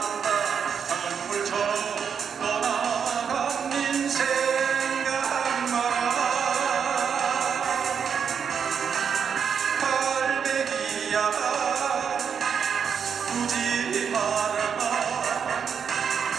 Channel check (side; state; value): left; quieter; 7.0 dB